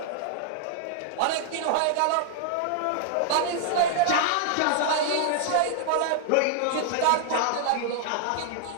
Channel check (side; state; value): both; different; correlation -0.01